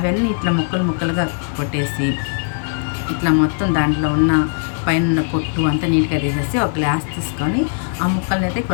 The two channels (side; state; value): right; silent; 62 dB below the other